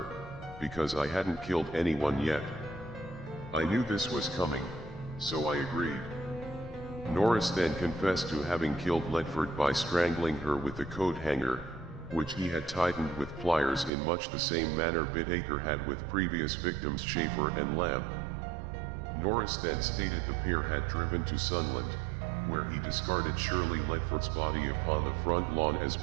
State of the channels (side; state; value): left; drops out; at 13.9 s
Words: because I hadn't killed anyone yet. I knew this was coming, so I agreed. Norris then confessed to having killed Ledford by strangling her with a coat hanger, which he had tightened with pliers in much the same manner Bittaker had with previous victims Schaefer and Lamb. Norris then stated the pair had driven to Sunland, where he discarded Shirley Ledford's body upon the front lawn as